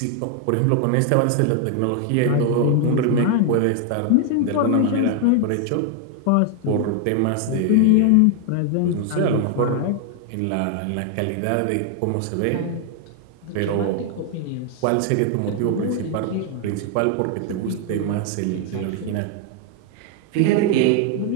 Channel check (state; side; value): different; both; correlation 0.00